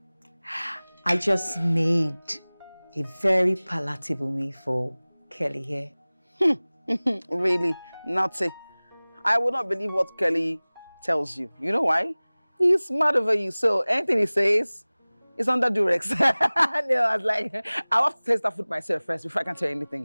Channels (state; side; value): inverted; both; correlation -1.00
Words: I just made a very palatable meal for Kelly here. Really? Naughty. I would not believe what Kelly tells you. You know why? He's mad over you, so anything he says is under duress. No, I was like, I have to taste that food myself first before I can tell you